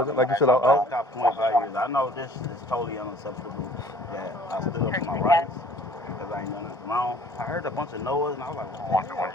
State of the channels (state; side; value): normal; both; correlation 0.53